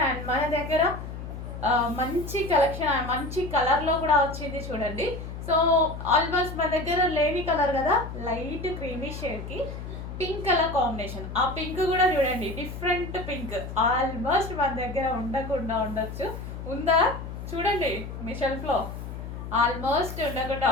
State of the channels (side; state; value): left; noise; hum, 9 dB below the sound